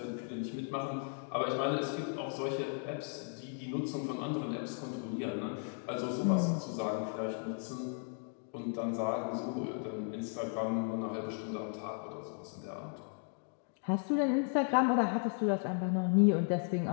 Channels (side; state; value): right; silent; 54 dB below the other